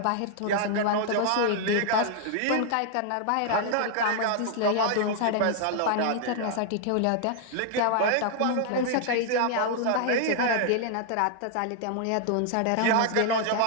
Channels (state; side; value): different; both; correlation 0.00